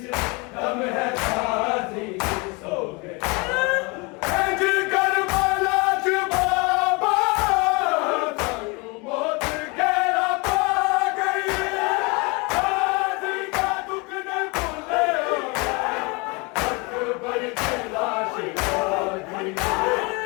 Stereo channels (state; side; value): quieter; right; 28.6 dB